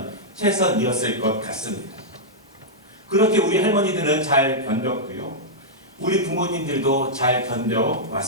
최선이었을 것 같습니다. 그렇게 우리 할머니들은 잘 견뎠고요. 우리 부모님들도 잘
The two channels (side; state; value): both; normal; correlation -0.07